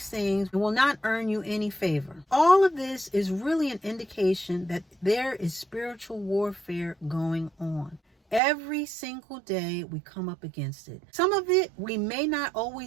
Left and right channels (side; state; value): left; drops out; at 8.4 s